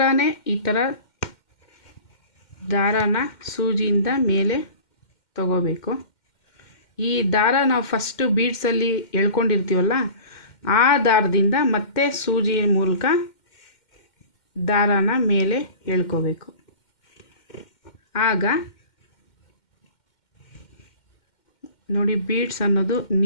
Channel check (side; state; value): right; late; 2.1 ms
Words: ಈ ಥರ ದಾರಾನ ಸೂಜಿಯಿಂದ ಮೇಲೆ ತಗೋಬೇಕು. ಈ ದಾರ ನಾವು ಫಸ್ಟು ಬೀಡ್ಸಲ್ಲಿ ಎಳ್ಕೊಂಡಿರ್ತೀವಲ್ಲ ಆ ದಾರದಿಂದ ಮತ್ತೆ ಸೂಜಿ ಮೂಲಕ ದಾರಾನ ಮೇಲೆ ಎಳ್ಕೋಬೇಕು. ಆಗ ನೋಡಿ ಬೀಡ್ಸ್ ಅನ್ನೋದು